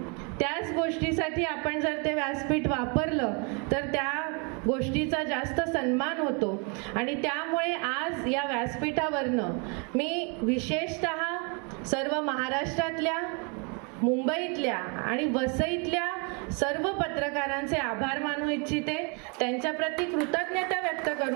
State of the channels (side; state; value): left; quieter; 34.6 dB